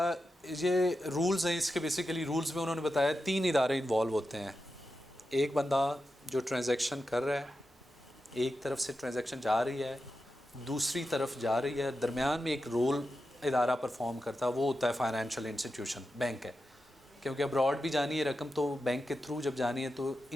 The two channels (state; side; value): normal; both; correlation 0.90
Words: ये रूल्स हैं, इसके बेसिकली रूल्स में उन्होंने बताया 3 इदारे इन्वॉल्व होते हैं। एक बंदा जो ट्रांजैक्शन कर रहा है, एक तरफ से ट्रांजैक्शन जा रही है, दूसरी तरफ जा रही है, दरमियान में एक रोल इदारा परफॉर्म करता है, वो होता है फाइनेंशियल इंस्टीट्यूशन, बैंक है। क्योंकि अब्रॉड भी जानी है रकम तो बैंक के थ्रू जब जानी है तो